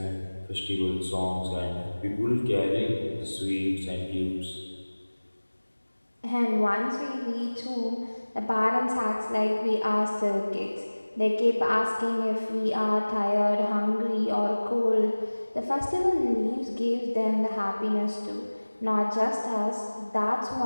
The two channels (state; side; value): inverted; both; correlation -1.00